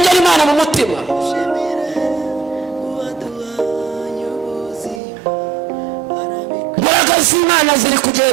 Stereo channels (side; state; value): left; drops out; at 5.0 s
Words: Imana mu mutima. Imbaraga z'Imana ziri